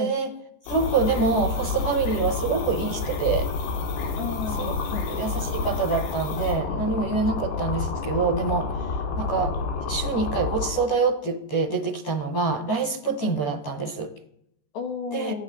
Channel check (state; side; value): late; right; 14 ms